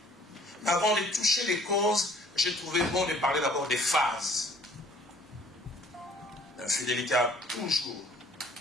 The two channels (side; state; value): both; normal; correlation 0.56